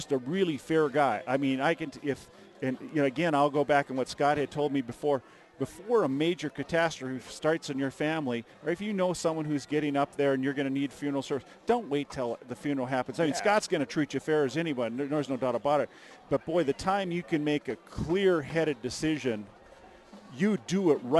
a really fair guy. I mean, again, I'll go back on what Scott had told me before. Before a major catastrophe starts in your family, or if you know someone who's getting up there and you're going to need funeral service, don't wait till the funeral happens. I mean, Scott's going to treat you fair as anyone. There's no doubt about it. But, boy, the time you can make a clear-headed decision, you do it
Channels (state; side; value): identical; both; correlation 1.00